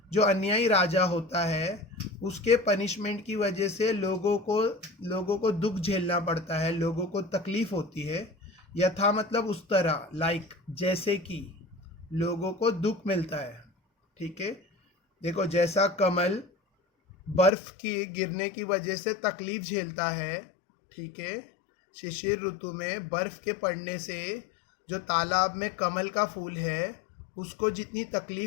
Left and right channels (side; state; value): right; drops out; at 17.5 s